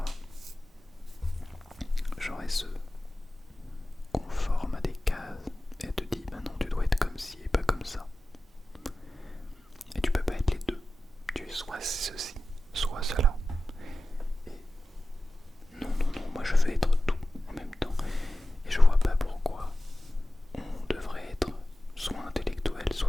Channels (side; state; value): both; normal; correlation 0.95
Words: genre elle se conforme à des cases et elle te dit bah non, tu dois être comme ci et pas comme ça. Et tu peux pas être les deux. Tu es soit ceci, soit cela. Et non, moi je veux être tout en même temps. Et je vois pas pourquoi on devrait être soit intellectuel,